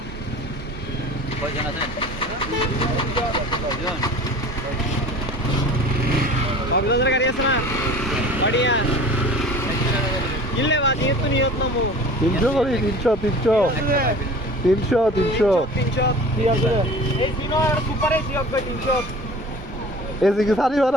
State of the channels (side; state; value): both; normal; correlation 0.41